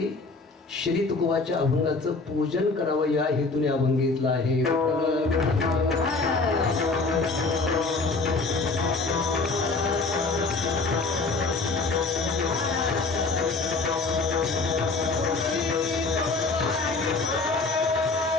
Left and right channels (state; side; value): quieter; right; 3.9 dB